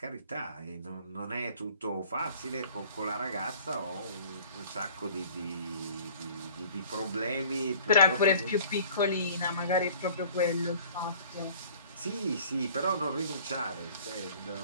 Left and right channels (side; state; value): both; inverted; correlation -0.50